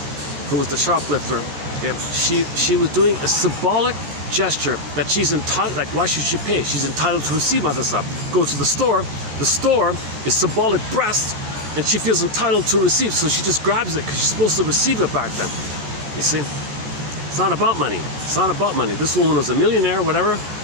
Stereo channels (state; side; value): late; left; 14 ms